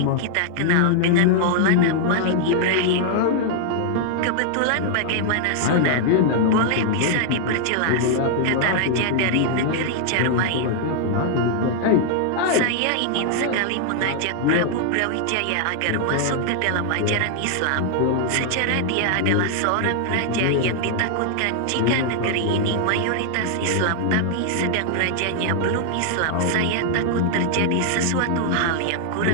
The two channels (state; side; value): different; both; correlation 0.00